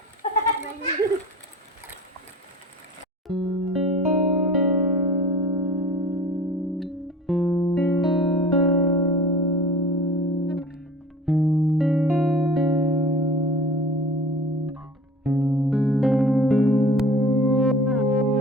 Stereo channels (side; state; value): both; normal; correlation 0.40